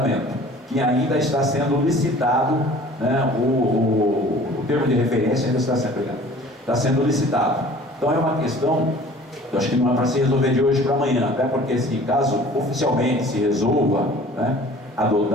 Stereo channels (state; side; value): normal; both; correlation 0.48